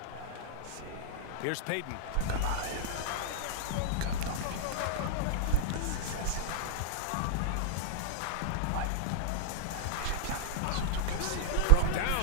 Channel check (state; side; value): different; both; correlation -0.02